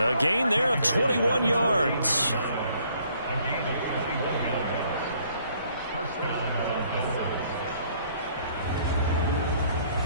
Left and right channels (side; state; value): both; inverted; correlation -0.64